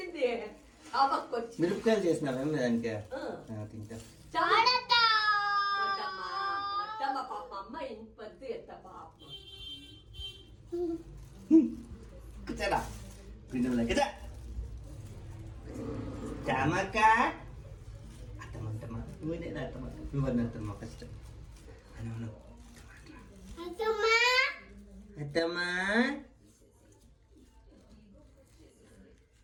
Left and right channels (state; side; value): identical; both; correlation 1.00